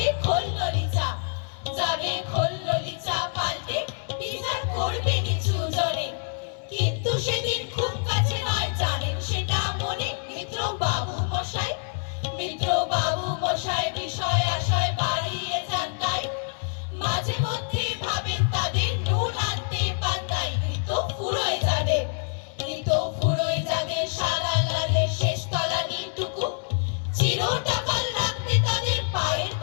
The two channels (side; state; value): right; silent; 61 dB below the other